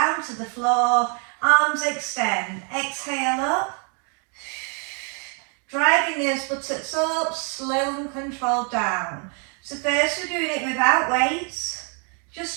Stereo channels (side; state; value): left; quieter; 38.8 dB